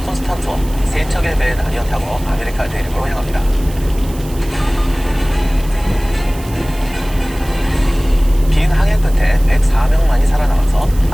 콘스탄트와 세 척의 배에 나뉘어 타고 아메리카 대륙으로 향합니다. 긴 항해 끝에 104명만이 살아남아서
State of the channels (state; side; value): noise; right; hiss, 19 dB below the sound